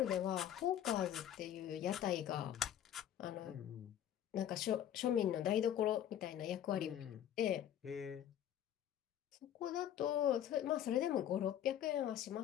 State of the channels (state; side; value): quieter; right; 10.6 dB